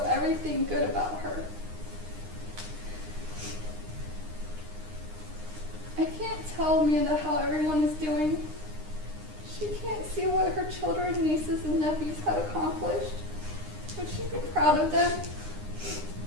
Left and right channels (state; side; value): late; left; 9.8 ms